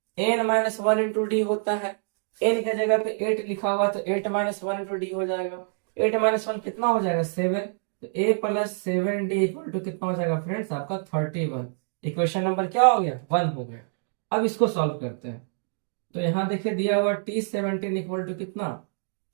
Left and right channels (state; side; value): silent; left; digital silence